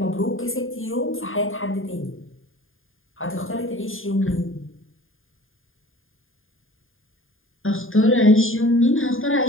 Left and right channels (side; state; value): right; late; 0.59 ms